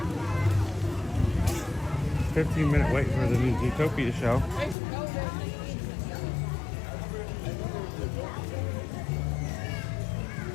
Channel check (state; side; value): drops out; right; at 4.8 s